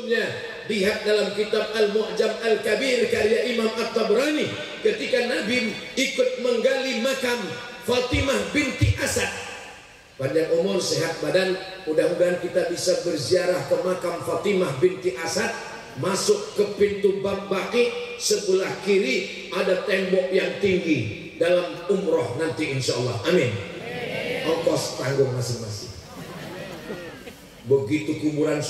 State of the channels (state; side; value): identical; both; correlation 1.00